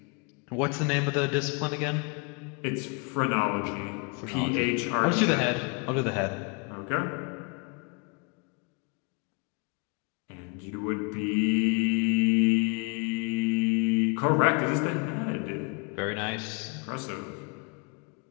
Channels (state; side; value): quieter; right; 32.6 dB